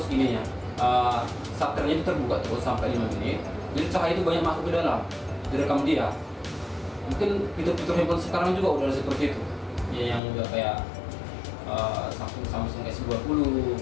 ininya. Shutternya itu terbuka terus sampai 5 menit. Jadi cahaya itu banyak masuk ke dalam. Direkam dia. Mungkin fitur-fitur handphone sekarang juga udah seperti itu. Ya, yang udah kayak Samsung S20,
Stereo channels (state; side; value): drops out; right; at 10.2 s